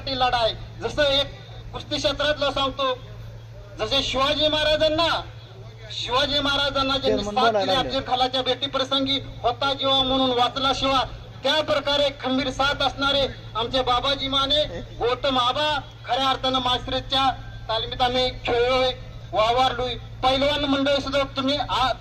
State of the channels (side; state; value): both; identical; correlation 1.00